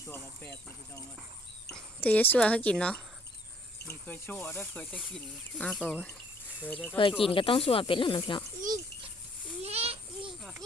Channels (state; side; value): normal; both; correlation 0.61